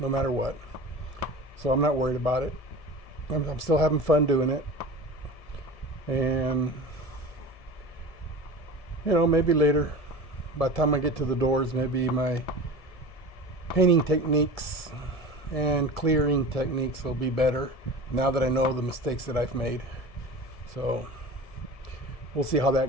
matter what. So I'm not worried about it. I'm still having fun doing it. And maybe later, by the time I get to the doors, maybe my painting techniques and clearing techniques will be better now that I know the mistakes that I've made. So we'll see how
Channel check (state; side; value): late; right; 1.7 ms